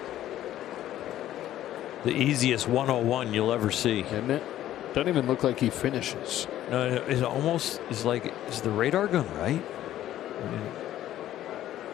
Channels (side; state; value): right; quieter; 12.9 dB